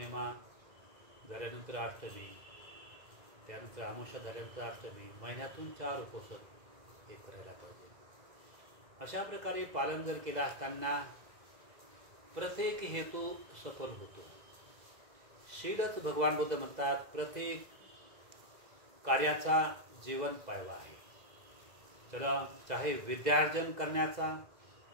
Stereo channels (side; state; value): left; late; 2.0 ms